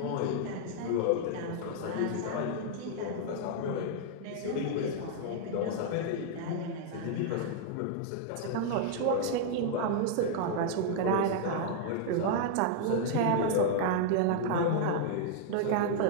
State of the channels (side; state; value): both; different; correlation -0.01